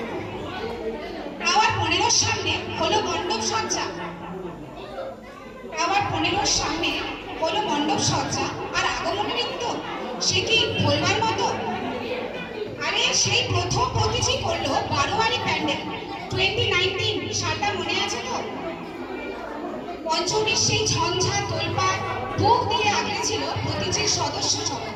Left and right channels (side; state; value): both; identical; correlation 1.00